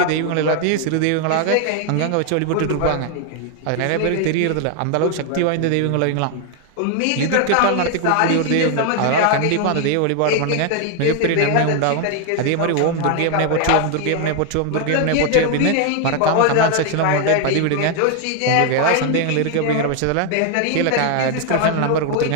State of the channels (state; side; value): different; both; correlation 0.00